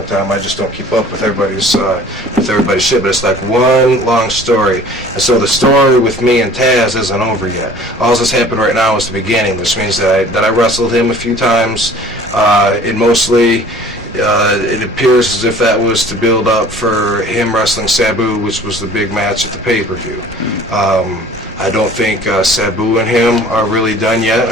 time. I just don't keep up with everybody's shit, but it's like one long story. And so the story with me and Taz isn't over yet. All that's happened right now is the beginning, which means that I wrestled him a few times. It appears as if that was to build up for him wrestling Sabu, which was the big match at the pay-per-view. I don't think Sabu and him are really done yet.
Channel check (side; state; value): both; normal; correlation 0.49